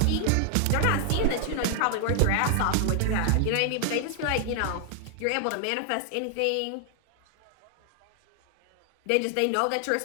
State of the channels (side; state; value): both; different; correlation 0.00